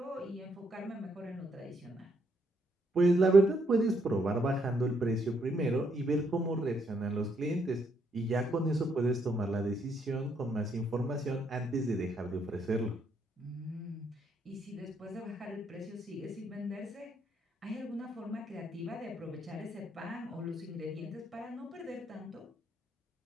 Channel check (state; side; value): normal; both; correlation 0.74